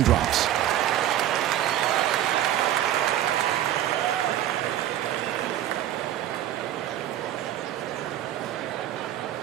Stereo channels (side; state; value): left; quieter; 12.1 dB